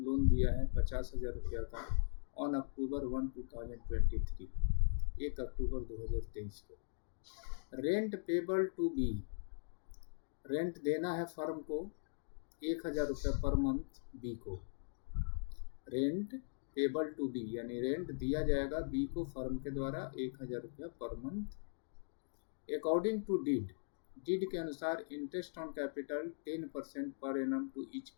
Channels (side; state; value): right; silent; digital silence